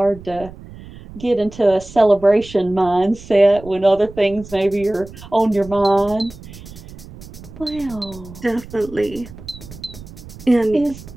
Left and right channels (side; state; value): right; noise; rumble, 17 dB below the sound